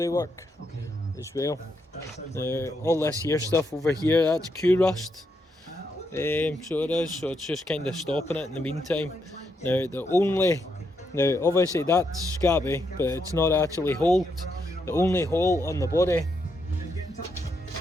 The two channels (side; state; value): both; normal; correlation 0.80